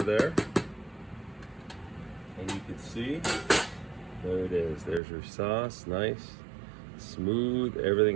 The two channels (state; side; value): drops out; left; at 5.0 s